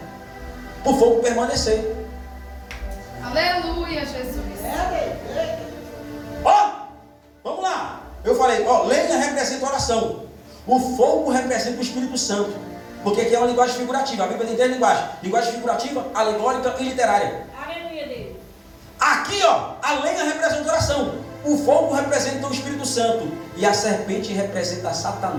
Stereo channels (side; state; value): both; identical; correlation 1.00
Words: para o fogo permanecer. Aleluia, Jesus. Ó, vamos lá. Eu falei, ó, lenha representa oração. O fogo representa o Espírito Santo. Porque aqui é uma linguagem figurativa. A Bíblia tem três linguagens: linguagem figurativa, alegórica e literária. Aleluia, Deus. Aqui, ó, a lenha representa oração. O fogo representa o Espírito Santo. E a serpente representa